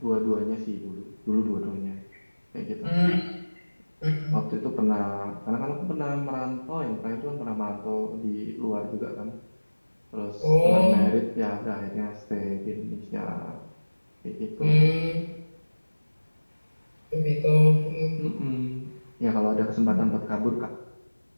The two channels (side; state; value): both; inverted; correlation -1.00